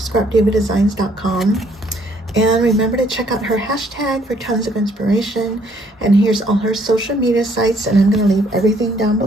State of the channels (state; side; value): normal; both; correlation 0.65